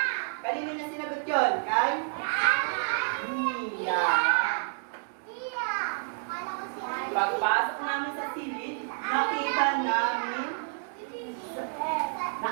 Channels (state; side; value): silent; left; digital silence